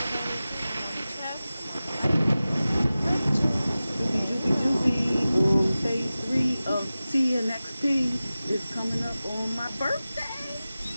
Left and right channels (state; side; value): inverted; both; correlation -0.96